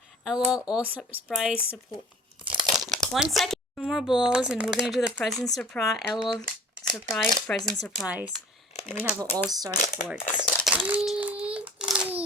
L.O.L. All Surprise Support. 1 second. 2 more balls, and we're gonna do the present surprise. L.O.L. Surprise, present surprise. And we have an all-star sports.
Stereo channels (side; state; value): both; normal; correlation 0.45